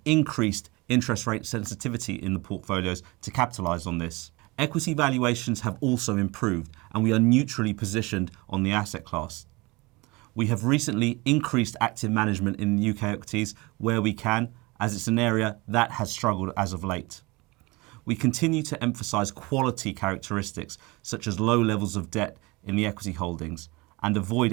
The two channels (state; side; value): quieter; left; 24.4 dB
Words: increased interest rate sensitivity in the portfolios to capitalise on this. Equity valuations have also improved, and we are neutrally positioned on the asset class. We have recently increased active management in UK equities where we can, as it's an area that has struggled as of late. We continue to emphasise quality characteristics such as low levels of debt in the equity holdings and avoid